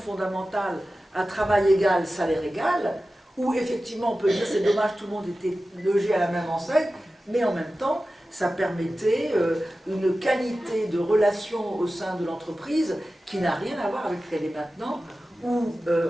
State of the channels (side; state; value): both; normal; correlation 0.94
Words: à travail égal, salaire égal, où effectivement on peut dire c'est dommage, tout le monde était logé à la même enseigne, mais en même temps, ça permettait une qualité de relation au sein de l'entreprise qui n'a rien à voir avec ce qu'elle est maintenant, où